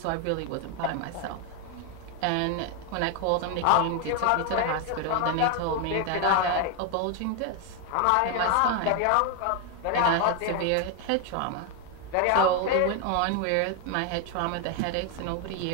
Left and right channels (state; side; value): different; both; correlation 0.01